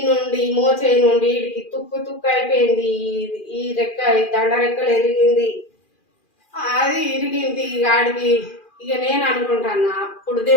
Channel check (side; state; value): right; late; 2.4 ms